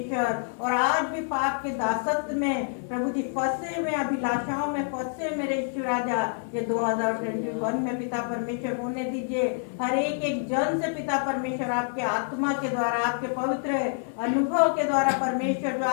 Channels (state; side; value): silent; right; 60 dB below the other